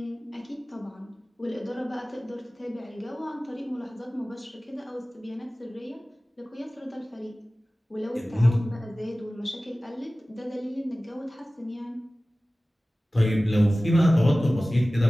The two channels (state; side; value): normal; both; correlation 0.97